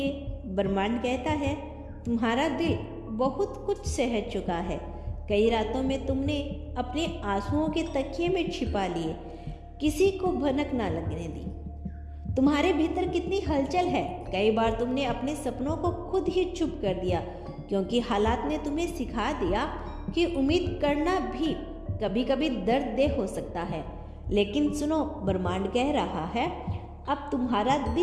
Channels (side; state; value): both; identical; correlation 1.00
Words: ब्रह्मांड कहता है, तुम्हारा दिल बहुत कुछ सह चुका है। कई रातों में तुमने अपने आंसुओं के तकिए में छिपा लिए, किसी को भनक ना लगने दी। तुम्हारे भीतर कितनी हलचल है। कई बार तुमने अपने सपनों को खुद ही चुप कर दिया, क्योंकि हालात ने तुम्हें सिखा दिया कि उम्मीद करना भी कभी कभी दर्ददेह हो सकता है। लेकिन सुनो, ब्रह्मांड कह रहा है, अब तुम्हारा